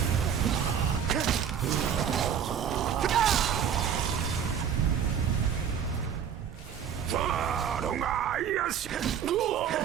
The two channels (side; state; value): left; quieter; 8.2 dB